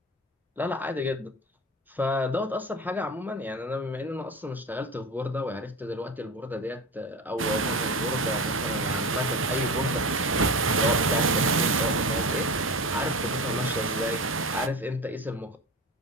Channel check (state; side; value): normal; both; correlation 0.28